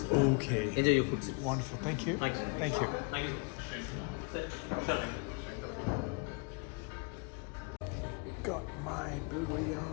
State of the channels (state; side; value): quieter; right; 33.5 dB